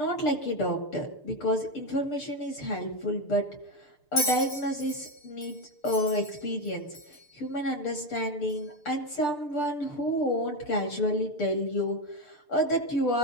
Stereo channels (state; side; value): late; right; 6.7 ms